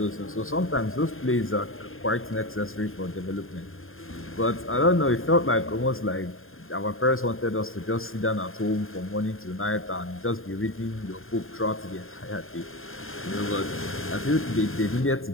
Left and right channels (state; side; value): late; right; 0.60 ms